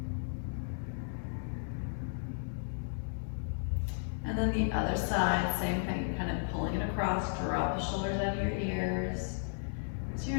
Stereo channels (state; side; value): silent; right; 55 dB below the other